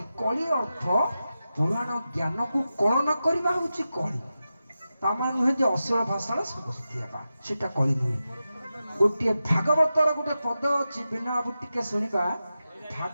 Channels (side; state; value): both; inverted; correlation -0.92